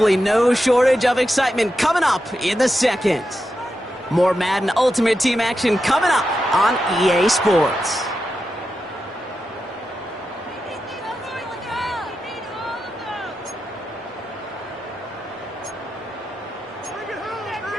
no shortage of excitement coming up in the second. More Madden Ultimate Team action coming up on EA Sports.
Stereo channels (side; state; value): both; normal; correlation 0.88